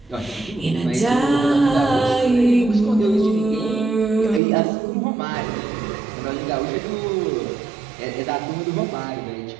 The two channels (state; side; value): drops out; left; at 4.4 s